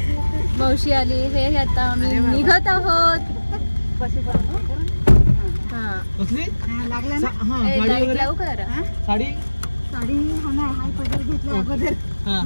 मावशी आली. हे आता आम्ही निघत आहोत. हा लाईट लावू का जरा. साडी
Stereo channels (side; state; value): both; inverted; correlation -1.00